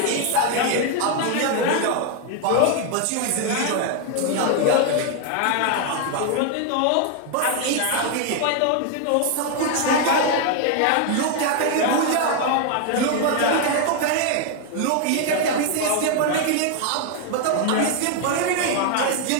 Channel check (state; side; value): different; both; correlation 0.01